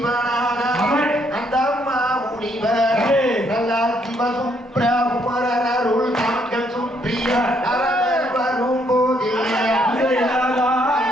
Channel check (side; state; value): both; normal; correlation 0.71